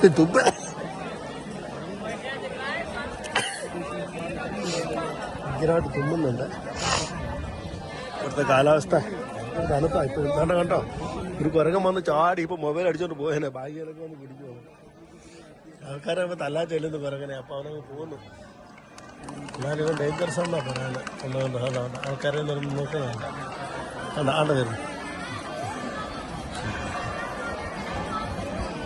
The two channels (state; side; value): identical; both; correlation 1.00